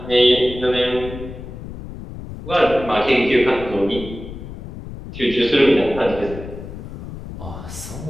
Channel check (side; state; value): left; noise; rumble, 11 dB below the sound